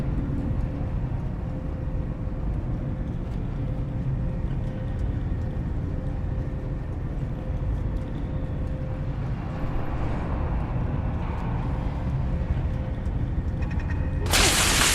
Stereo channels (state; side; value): identical; both; correlation 1.00